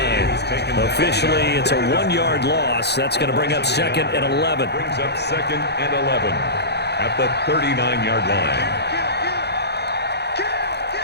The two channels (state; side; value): late; right; 0.48 ms